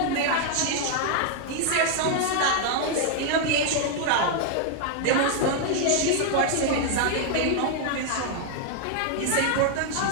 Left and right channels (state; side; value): different; both; correlation 0.00